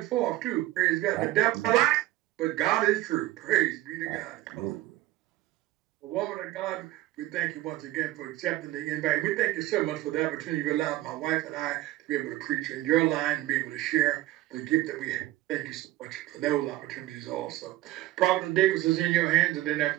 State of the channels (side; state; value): left; quieter; 16.4 dB